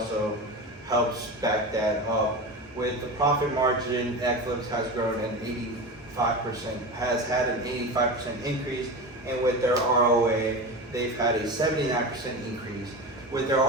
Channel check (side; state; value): both; normal; correlation 0.26